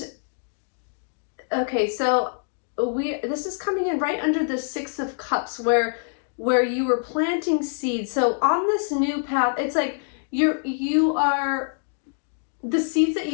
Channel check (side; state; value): right; silent; digital silence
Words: okay, so this is coming in right under the Six of Cups where you were planting seeds. So on this new path, it's like you are the seeds that